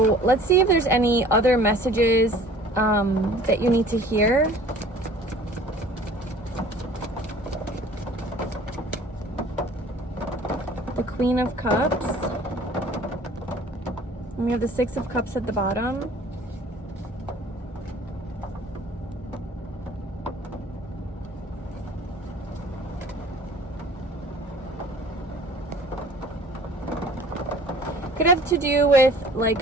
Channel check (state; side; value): normal; both; correlation 0.49